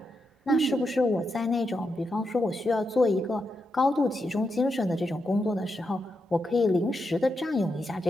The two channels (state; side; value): normal; both; correlation 0.85